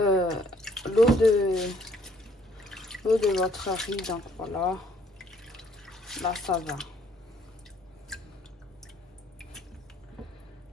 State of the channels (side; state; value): both; normal; correlation 0.64